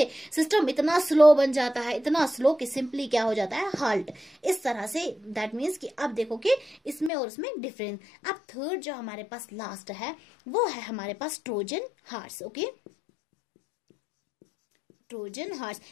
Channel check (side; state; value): right; drops out; at 7.1 s